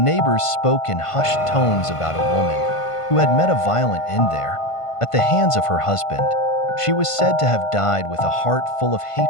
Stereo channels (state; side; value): late; right; 1.5 ms